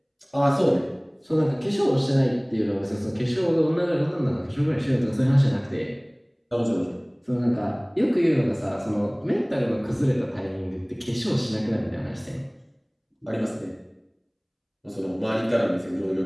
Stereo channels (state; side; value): identical; both; correlation 1.00